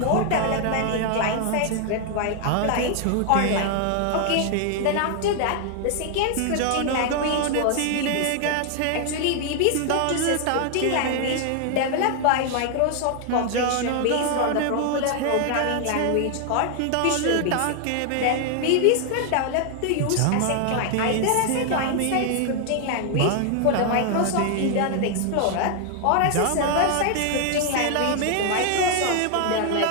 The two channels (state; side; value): different; both; correlation 0.00